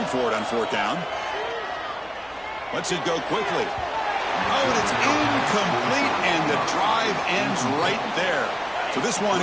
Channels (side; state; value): both; identical; correlation 1.00